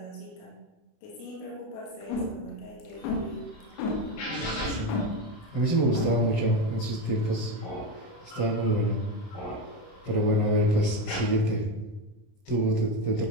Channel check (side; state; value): right; late; 29 ms